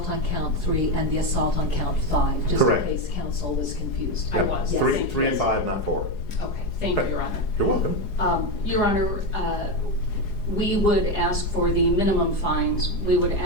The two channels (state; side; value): late; right; 4.8 ms